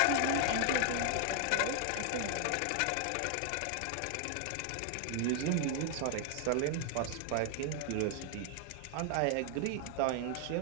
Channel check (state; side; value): different; both; correlation 0.00